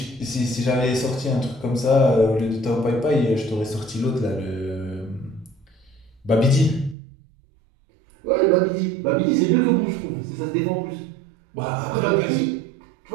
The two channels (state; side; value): drops out; left; at 7.0 s